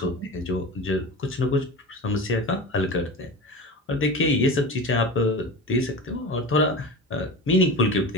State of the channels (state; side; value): normal; both; correlation 0.30